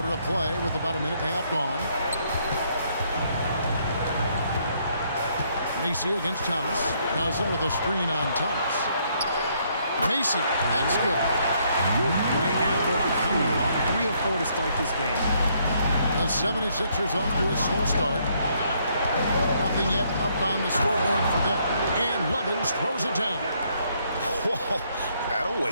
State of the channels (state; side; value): inverted; both; correlation -0.70